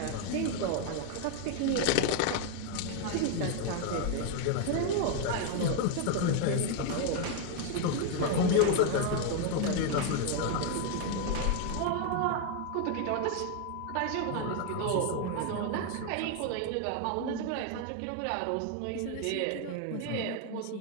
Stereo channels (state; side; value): different; both; correlation 0.01